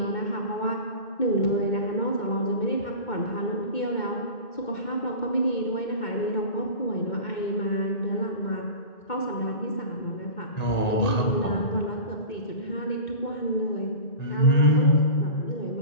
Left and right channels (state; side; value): late; right; 2.2 ms